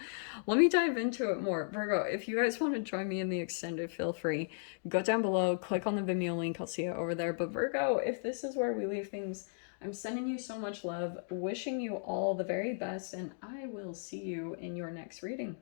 Let me dive into it more. Virgo, if you guys want to join me in the extended, feel free. Go down below, click on the Vimeo link. I'll see you over there. But Virgo, if this is where we leave things, I'm sending you so much love, wishing you all the very best, and I will see you in your next reading.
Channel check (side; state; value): right; silent; digital silence